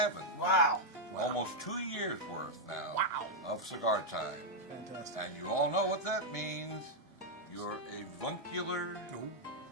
Wow. Almost 2 years worth now Wow. of Cigar Time. Fantastic. And you all know what that means. You're a avuncular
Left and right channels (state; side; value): normal; both; correlation -0.02